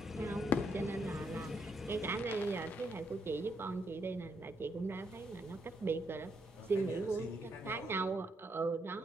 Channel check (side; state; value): both; normal; correlation 0.76